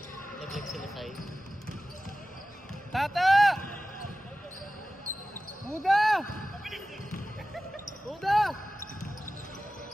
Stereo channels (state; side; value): normal; both; correlation 0.95